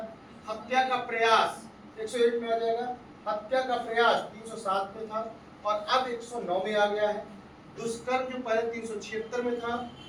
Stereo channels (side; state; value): both; identical; correlation 1.00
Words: हत्या का प्रयास 101 में आ जाएगा। हत्या का प्रयास 307 में था, और अब 109 में आ गया है। दुष्कर्म जो पहले 376 में था,